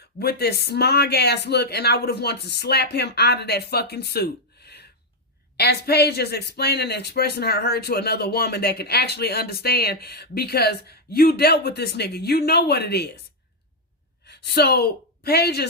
with this smug ass look, and I would have wanted to slap him out of that fucking suit. As Paige is explaining and expressing her hurt to another woman that can actually understand, because you dealt with this nigga. You know what it is. So Paige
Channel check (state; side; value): normal; both; correlation 0.01